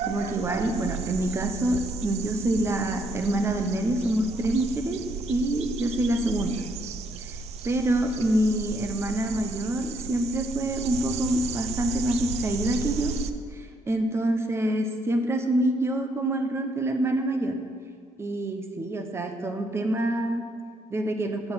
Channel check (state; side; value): normal; both; correlation 0.72